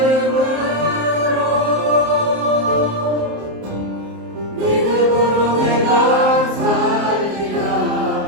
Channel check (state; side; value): late; left; 27 ms